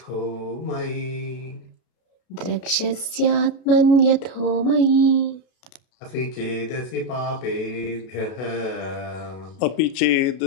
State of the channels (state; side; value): late; right; 32 ms